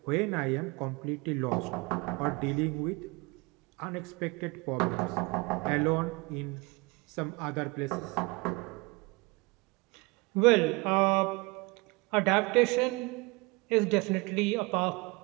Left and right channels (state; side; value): quieter; left; 26.1 dB